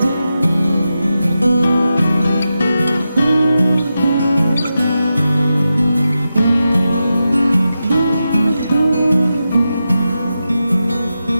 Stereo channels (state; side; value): inverted; both; correlation -0.90